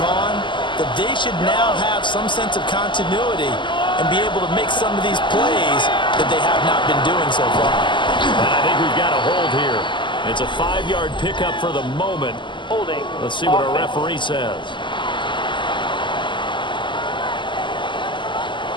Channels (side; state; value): right; late; 0.23 ms